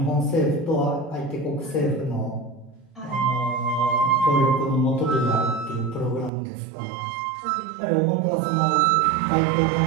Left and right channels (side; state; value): left; drops out; at 6.3 s